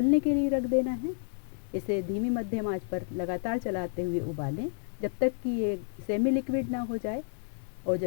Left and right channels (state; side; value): silent; right; 57 dB below the other